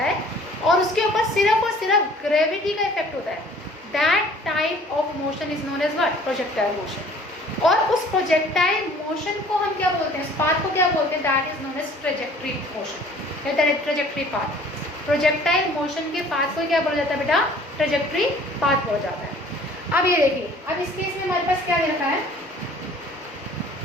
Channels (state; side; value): normal; both; correlation 0.52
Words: और उसके ऊपर सिर्फ और सिर्फ ग्रेविटी का इफेक्ट होता है, that type of motion is known as what, projectile motion. और उस प्रोजेक्टाइल मोशन को हम क्या बोलते हैं, उस पाथ को क्या बोलते हैं, that is known as trajectory motion, trajectory path. Projectile motion के पाथ को क्या बोला जाता है बेटा, ट्रेजेक्टरी पाथ बोला जाता है। अब ये देखिए, अब इस केस में हमारे पास क्या दे रखा है,